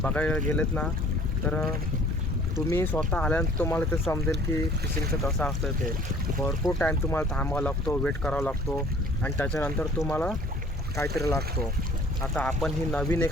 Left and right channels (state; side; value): normal; both; correlation 0.53